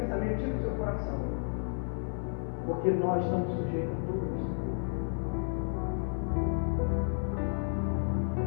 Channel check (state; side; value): silent; right; 56 dB below the other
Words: tire do seu coração, porque nós estamos sujeitos a tudo isso.